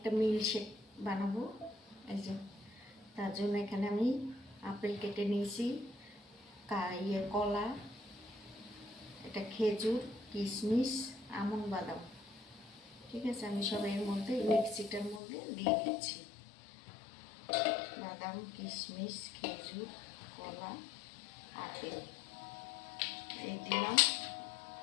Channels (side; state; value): right; drops out; at 15.2 s